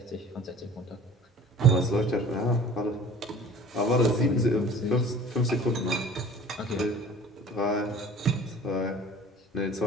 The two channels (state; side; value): normal; both; correlation 0.45